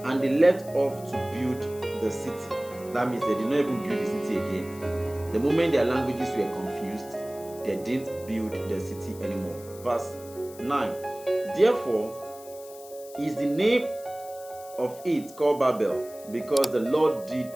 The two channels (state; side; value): noise; left; hiss, 19 dB below the sound